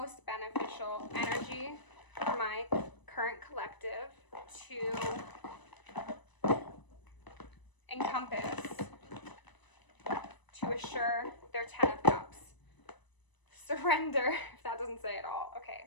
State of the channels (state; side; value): late; right; 1.0 ms